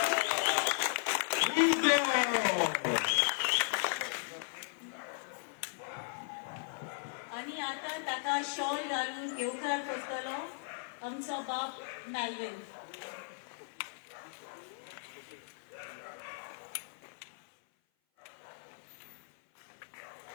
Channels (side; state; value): right; silent; 53 dB below the other